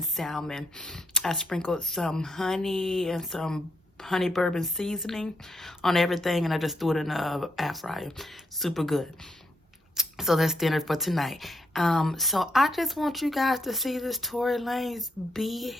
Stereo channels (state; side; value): normal; both; correlation 0.78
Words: salmon. I sprinkled some honey and some honey bourbon seasoning on everything, and I just threw it in the air fryer. Super good. So that's dinner for tonight. So I just want you guys to see this Tory Lanez